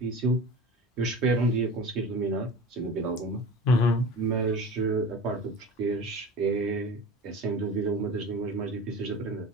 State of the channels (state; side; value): normal; both; correlation 0.34